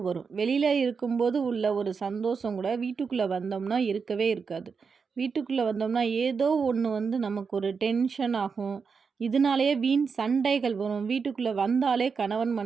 வரும். வெளியில் இருக்கும்போது உள்ள ஒரு சந்தோஷம் கூட வீட்டுக்குள்ளே வந்தோம்னா இருக்கவே இருக்காது. வீட்டுக்குள்ளே வந்தோம்னா ஏதோ ஒன்று நமக்கு ஒரு டென்ஷன் ஆகும். இதனாலேயே வீண் சண்டைகள் வரும். வீட்டுக்குள்ளே வந்தாலே கணவன்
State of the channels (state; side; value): quieter; left; 5.5 dB